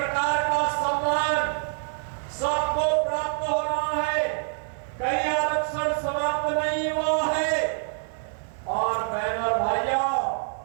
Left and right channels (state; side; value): silent; left; 61 dB below the other